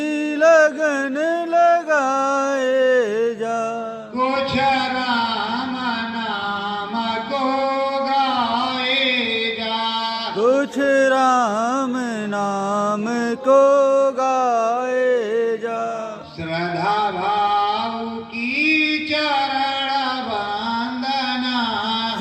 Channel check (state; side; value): identical; both; correlation 1.00